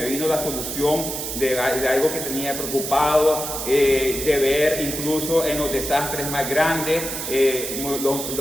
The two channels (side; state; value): right; noise; hiss, 5 dB below the sound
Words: vino la solución de algo que tenía preocupado, de ver incluso en los desastres más grandes,